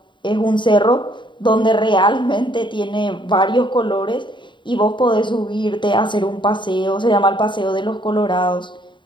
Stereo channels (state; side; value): late; right; 0.23 ms